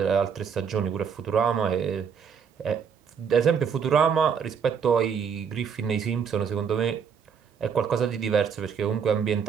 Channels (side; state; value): left; quieter; 6.9 dB